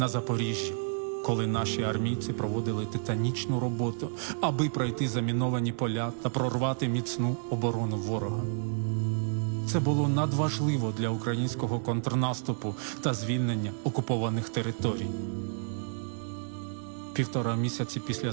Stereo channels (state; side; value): silent; left; 56 dB below the other